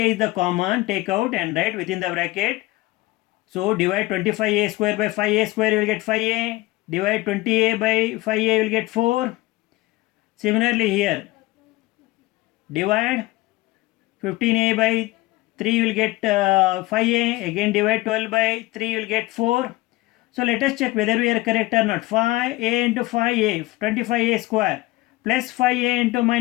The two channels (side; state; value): right; quieter; 20.0 dB